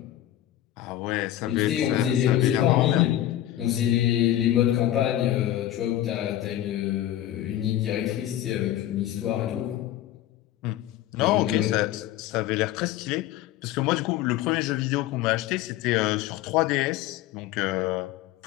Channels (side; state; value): right; quieter; 13.1 dB